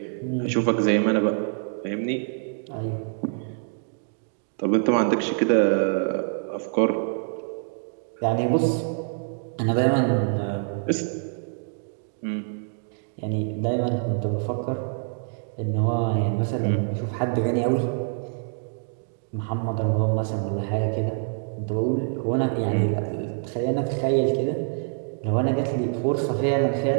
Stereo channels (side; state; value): left; silent; digital silence